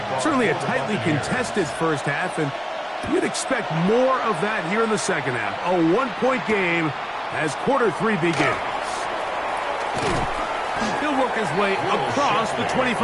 Certainly a tightly contested first half, and you'd expect more of that here in the second half. A 1-point game as quarter 3 begins. He'll work his way across the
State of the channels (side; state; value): both; identical; correlation 1.00